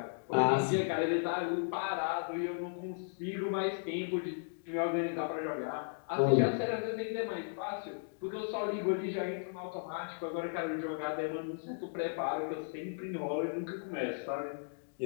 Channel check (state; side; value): silent; right; digital silence